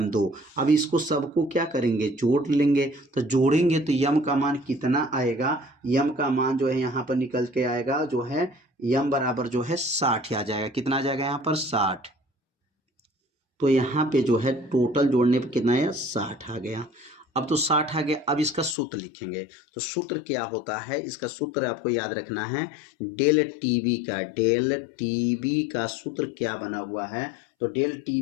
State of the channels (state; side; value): drops out; right; at 18.8 s